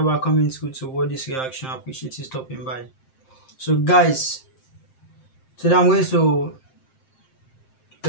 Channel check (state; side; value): late; right; 7.6 ms